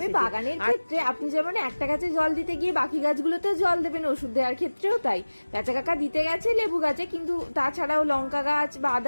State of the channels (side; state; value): both; inverted; correlation -1.00